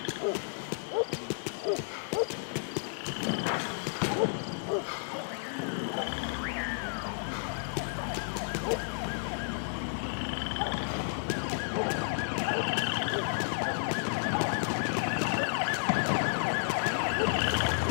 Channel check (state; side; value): silent; right; digital silence